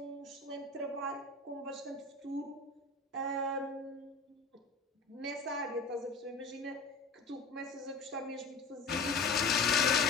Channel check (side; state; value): right; quieter; 4.0 dB